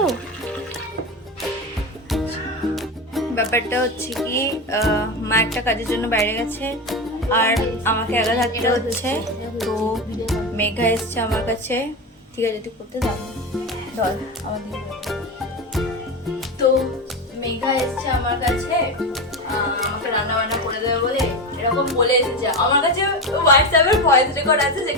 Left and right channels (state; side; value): normal; both; correlation 0.19